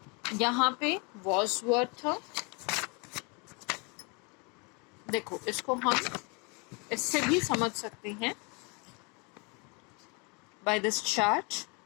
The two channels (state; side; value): quieter; right; 31.6 dB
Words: यहाँ पे वॉज वर्ड था। देखो इसको हम इससे भी समझ सकते हैं by this chart.